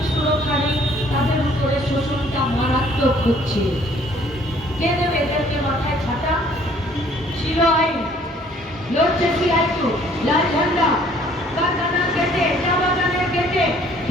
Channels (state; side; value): normal; both; correlation 0.59